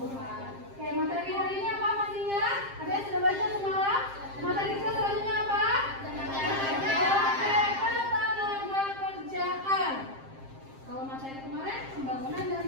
Oke, materi hari ini apa pastinya? Ada yang sudah baca semalam? Materi kita selanjutnya apa? Oke, tenaga kerjaan. Kalau materi kemarin pembangunan dan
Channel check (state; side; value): late; left; 7.5 ms